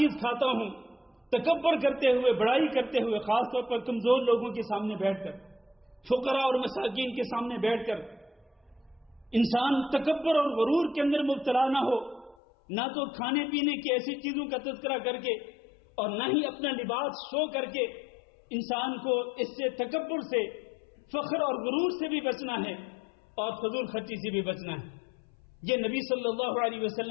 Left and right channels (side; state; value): right; drops out; at 12.4 s